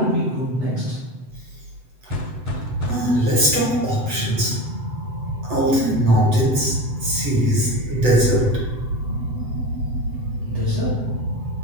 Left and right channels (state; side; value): late; left; 7.9 ms